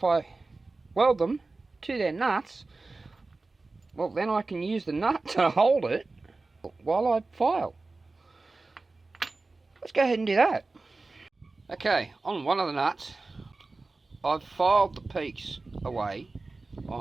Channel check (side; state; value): left; quieter; 3.5 dB